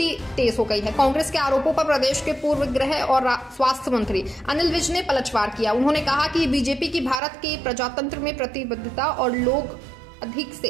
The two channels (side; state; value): left; drops out; at 7.2 s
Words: तेज हो गई है। कांग्रेस के आरोपों पर प्रदेश के पूर्व गृह और स्वास्थ्य मंत्री अनिल विज ने पलटवार किया। उन्होंने कहा कि बीजेपी की भारत के प्रजातंत्र में प्रतिबद्धता और लोग अधिक